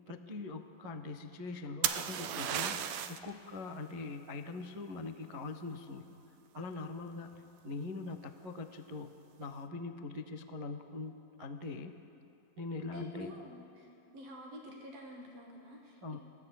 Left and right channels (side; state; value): left; late; 11 ms